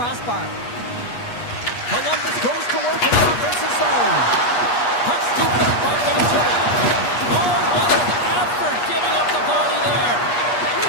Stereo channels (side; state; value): right; late; 8.3 ms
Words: Columbus goes to work in the offensive zone. Puck scooped up by Ventura. Oh, what an effort giving up the body there.